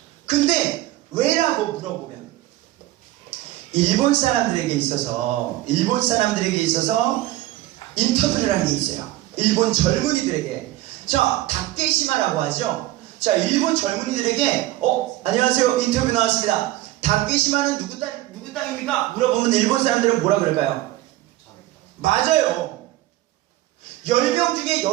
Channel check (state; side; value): quieter; left; 16.2 dB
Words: 근데 왜라고 물어보면 일본 사람들에게 있어서 인터뷰를 한 게 있어요. 일본 젊은이들에게. 자, 다케시마라고 하죠. 자, 일본 젊은이들에게 안녕하세요, 인터뷰 나왔습니다. 다케시마는 누구 땅입니까? 물어보면 일본 사람들은 뭐라 그럴까요? 맞아요. 10명 중에 8,